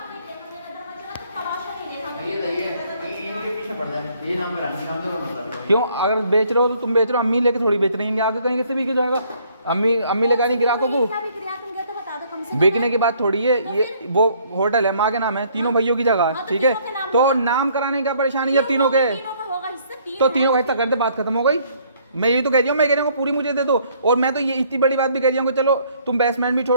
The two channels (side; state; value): both; inverted; correlation -0.63